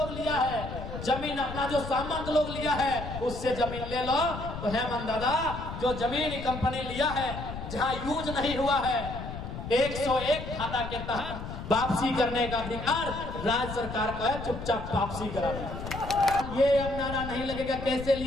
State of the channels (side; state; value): left; noise; rumble, 8 dB below the sound